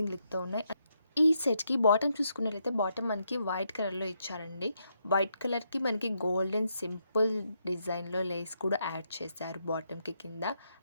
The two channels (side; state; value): both; inverted; correlation -0.79